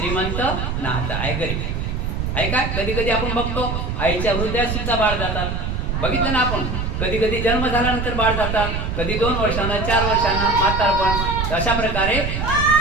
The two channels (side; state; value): right; noise; rumble, 2 dB below the sound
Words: नात आहे गरीब. आहे का? कधी कधी आपण बघतो आईच्या हृदयात सुद्धा बाळ जातात. बघितलं ना आपण. कधी कधी जन्म झाल्यानंतर बाळ जातात, कधी 2 वर्षांना 4 वर्षांना म्हातारपण. अशा प्रकारे